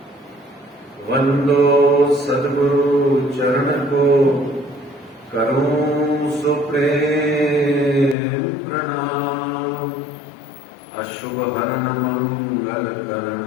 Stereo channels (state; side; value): drops out; right; at 8.2 s